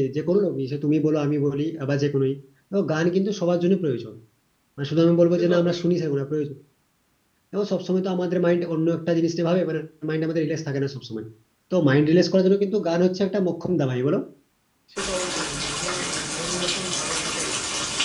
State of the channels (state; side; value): identical; both; correlation 1.00